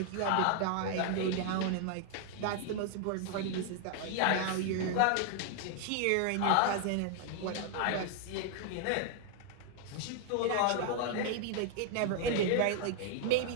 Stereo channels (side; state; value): both; different; correlation 0.00